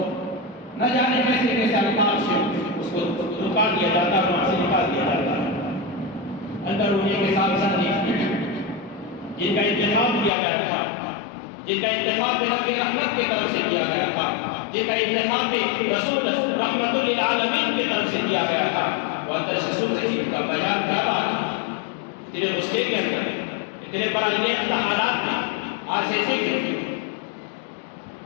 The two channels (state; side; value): drops out; right; at 10.3 s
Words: نہ جانے کیسے کیسے الفاظ سے اس کو رکا دیا جاتا ہے، وہاں سے نکال دیا جاتا ہے۔ اندر ہونے کے ساتھ ساتھ جن کا انتخاب کیا گیا تھا، جن کا انتخاب نبی رحمت کی طرف سے کیا گیا تھا، جن کا انتخاب رسول رحمت للعالمین کی طرف سے کیا گیا تھا، وہ اندر سے سن رہی کا بیان کیا رہا ہے، اتنے غصے کے اندر، اتنے برانگیزہ حالات میں آج ایسے ہی